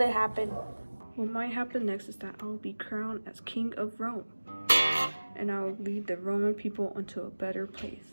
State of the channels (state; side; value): inverted; both; correlation -1.00